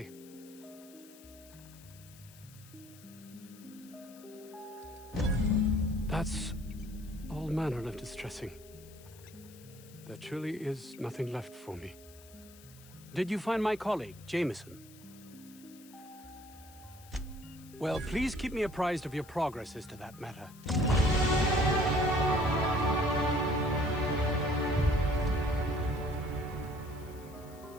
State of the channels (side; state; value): left; noise; hiss, 22 dB below the sound